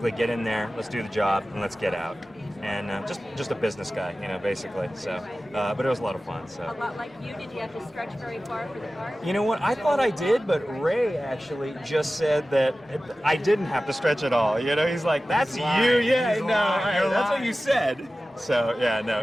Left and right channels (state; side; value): normal; both; correlation 0.96